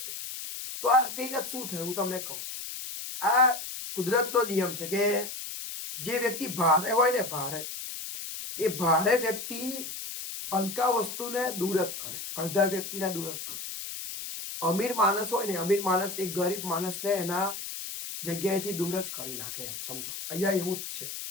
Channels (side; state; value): left; noise; hiss, 7 dB below the sound